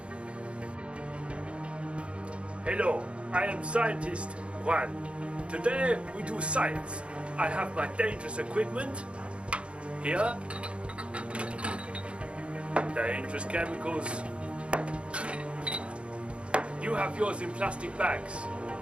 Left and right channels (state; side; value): late; left; 0.059 ms